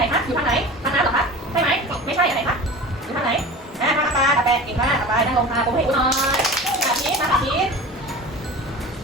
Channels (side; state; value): both; normal; correlation 0.35